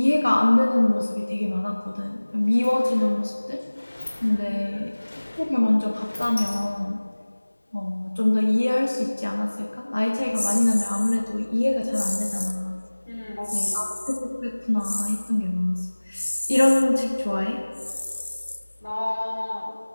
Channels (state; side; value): inverted; both; correlation -1.00